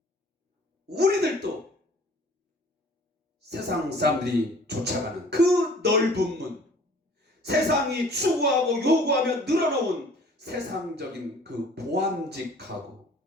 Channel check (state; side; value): normal; both; correlation 0.51